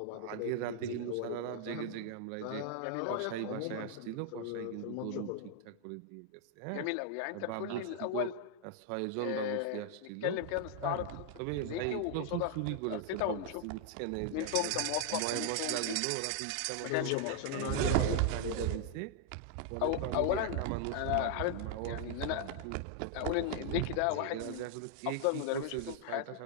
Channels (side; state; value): both; different; correlation 0.00